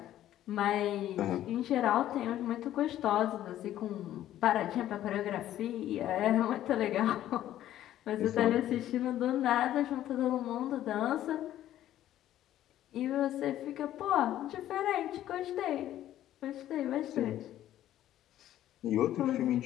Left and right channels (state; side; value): quieter; right; 12.6 dB